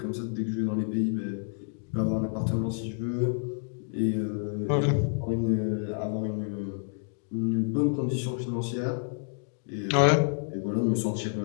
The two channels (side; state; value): right; silent; 59 dB below the other